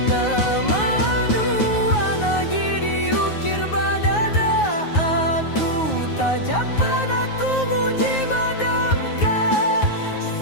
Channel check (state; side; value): late; right; 9.5 ms